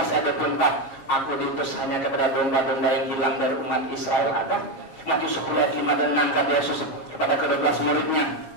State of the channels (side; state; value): right; late; 7.4 ms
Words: ayat 24, aku diutus hanya kepada domba-domba yang hilang dari umat Israel. Ada Matius 10 ayat 5 dan 6 kata Yesus kepada ke-12 muridnya.